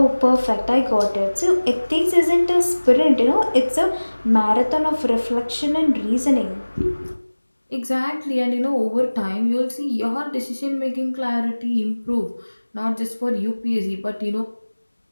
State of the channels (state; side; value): inverted; both; correlation -1.00